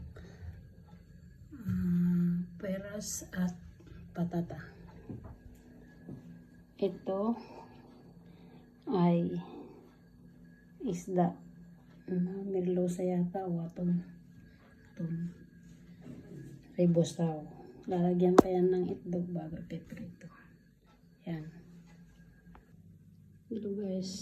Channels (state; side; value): identical; both; correlation 1.00